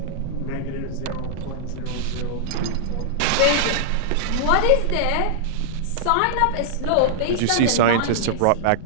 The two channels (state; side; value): different; both; correlation -0.01